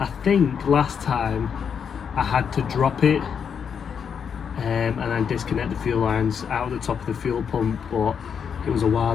think last time I had to drop it and then disconnect the fuel lines out of the top of the fuel pump, but it was a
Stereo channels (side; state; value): right; quieter; 7.1 dB